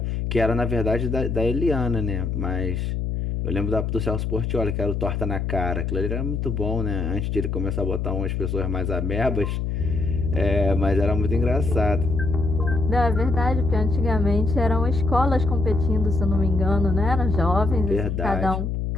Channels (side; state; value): left; noise; hum, 1 dB below the sound